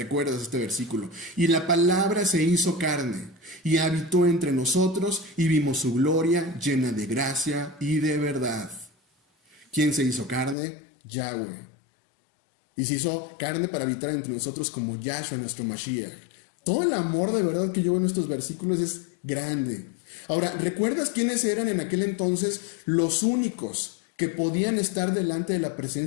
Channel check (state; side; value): drops out; right; at 10.6 s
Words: este versículo. Y la palabra se hizo carne y habitó entre nosotros y vimos su gloria llena de gracia y de verdad. ¿Quién se hizo carne? Yahweh. Y se hizo carne para habitar entre nosotros como Yahshua, nuestro Mashiach. Todo el amor de verdad que yo veo en estos versículos es grande. Ahora, ¿recuerdas quiénes eran en aquel entonces los únicos que podían estar delante de la